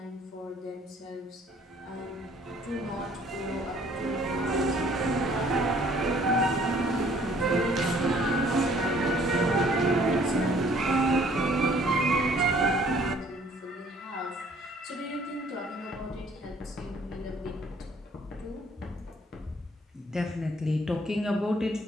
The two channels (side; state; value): both; normal; correlation 0.58